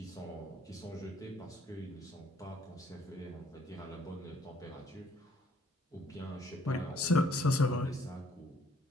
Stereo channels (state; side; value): normal; both; correlation 0.63